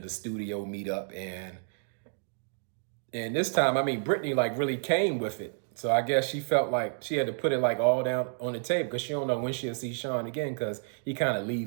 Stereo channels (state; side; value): silent; left; digital silence